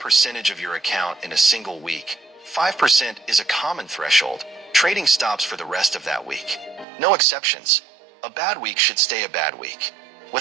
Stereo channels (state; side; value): drops out; left; at 6.9 s